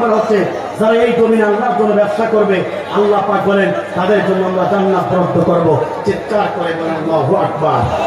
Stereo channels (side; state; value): both; identical; correlation 1.00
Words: হচ্ছে যারা এই জমিনে আল্লাহর জন্য ব্যবসা করবে, আল্লাহ পাক বলেন তাদের জন্য আমরা জান্নাত বরাদ্দ করব। চিৎকার করে বলেন আল্লাহু আকবার।